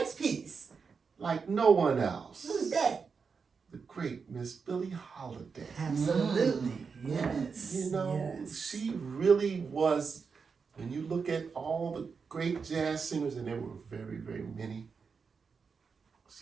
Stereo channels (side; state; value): left; quieter; 5.4 dB